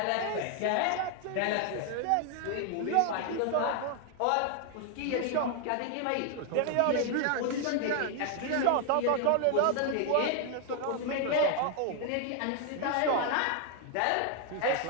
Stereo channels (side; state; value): both; different; correlation 0.00